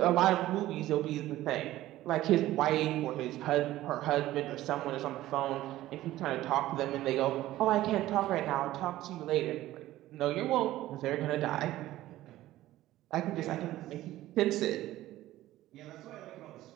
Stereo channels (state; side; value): quieter; left; 15.3 dB